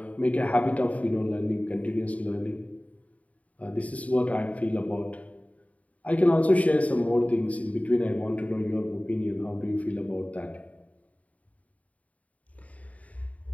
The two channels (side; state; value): right; late; 0.069 ms